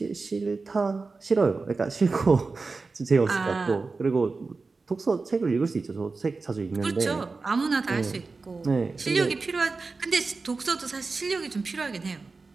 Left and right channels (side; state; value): left; quieter; 4.0 dB